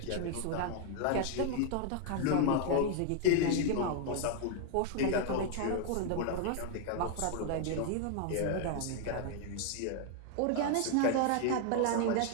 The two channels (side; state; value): both; different; correlation 0.00